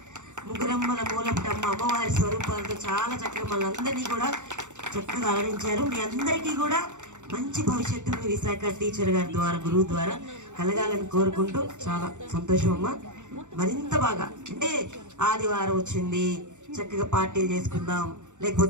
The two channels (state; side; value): late; left; 0.85 ms